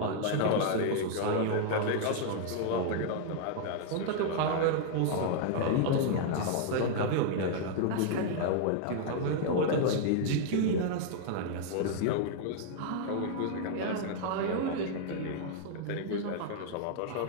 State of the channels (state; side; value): different; both; correlation -0.01